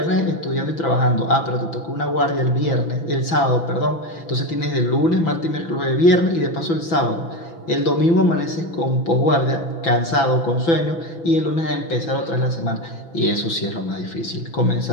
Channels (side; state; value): right; late; 6.0 ms